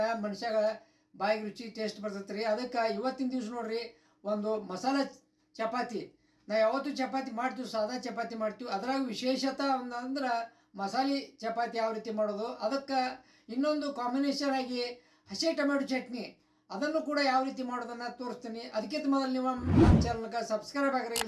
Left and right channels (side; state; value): both; identical; correlation 1.00